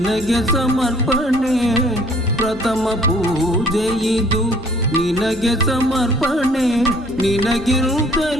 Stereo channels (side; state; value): both; normal; correlation 0.57